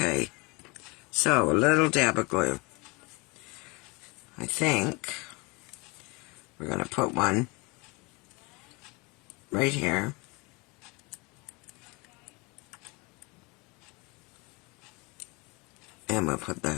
so a little dab of glue. I think we're going to put one right here. And we'll put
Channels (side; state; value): right; quieter; 27.2 dB